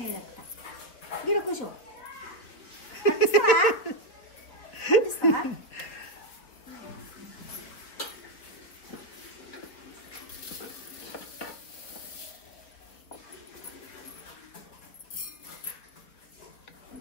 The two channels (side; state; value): right; late; 4.4 ms